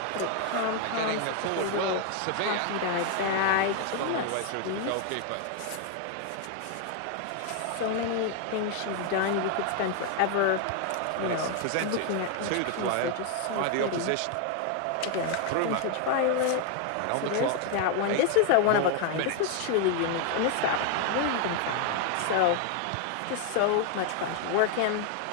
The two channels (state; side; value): different; both; correlation 0.01